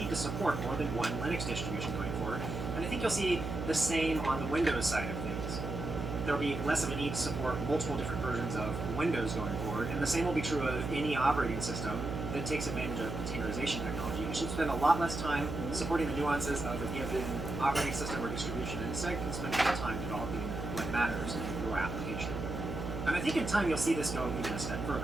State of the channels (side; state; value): right; noise; hum, 5 dB below the sound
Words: to support more than one Linux distribution going forward. And I think you'll see the same on the Windows side of things. There'll be less of a need to support multiple different versions of Windows going forward, and the same will be true of any operating system that takes advantage of containerization technology. You should spend a lot less time supporting the nuances of a given operating system or distribution, and instead can spend more time developing what matters in your application. And I think in time you'll see this go even a step